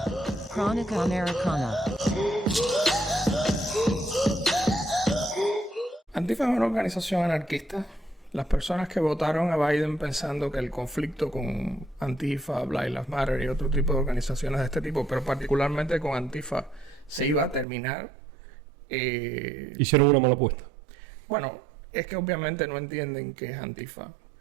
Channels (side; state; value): left; drops out; at 17.7 s